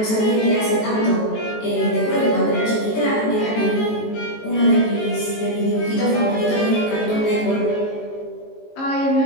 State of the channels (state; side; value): late; right; 18 ms